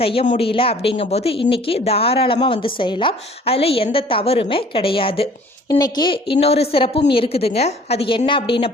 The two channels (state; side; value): normal; both; correlation 0.52